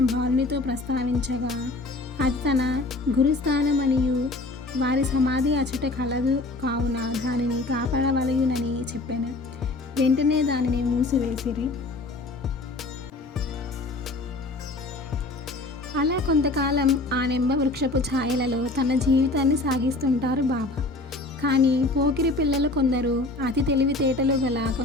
బాలునితో ప్రస్తావించగా అది తన గురుస్థానమనియు వారి సమాధి అచట కలదు కావున దానిని కాపాడవలయునని చెప్పాను. వెంటనే దానిని మూసివేసిరి. అలా కొంతకాలం ఆ నింబ వృక్షపు ఛాయలలో తన జీవితాన్ని సాగిస్తుంటారు బాబా. కానీ పోకిరి పిల్లలు కొందరు, అతి తెలివితేటలు గల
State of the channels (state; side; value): quieter; right; 3.1 dB